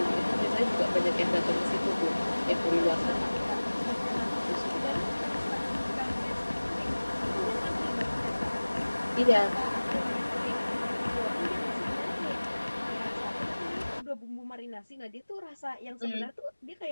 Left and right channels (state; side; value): inverted; both; correlation -1.00